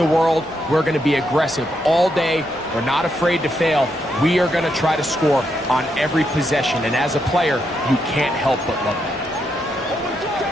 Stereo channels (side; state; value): both; normal; correlation 0.80